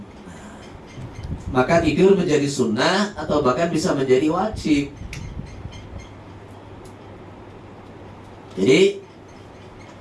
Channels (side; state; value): both; identical; correlation 1.00